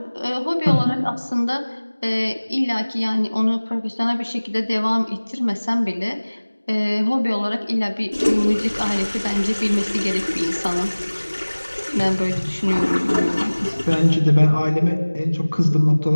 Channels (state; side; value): inverted; both; correlation -1.00